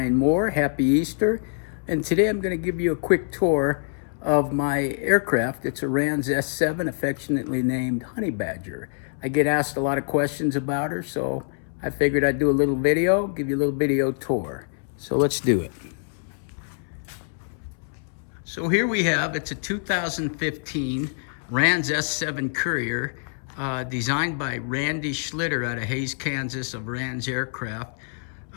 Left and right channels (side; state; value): right; silent; 62 dB below the other